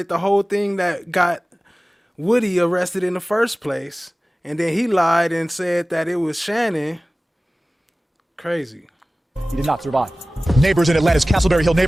the whole thing that got Woody arrested in the first place, and then he lied and said that it was Shannon. Crazy. He did not survive. Neighbors in Atlanta's Castleberry Hill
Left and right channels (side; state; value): both; normal; correlation 0.98